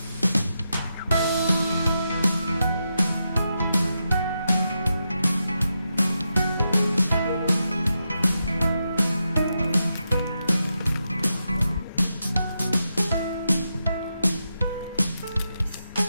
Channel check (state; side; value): inverted; both; correlation -0.86